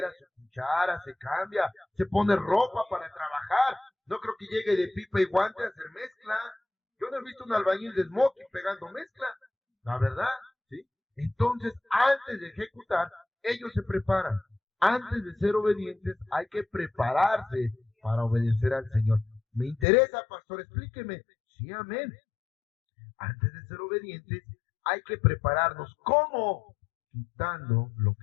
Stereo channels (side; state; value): right; drops out; at 19.9 s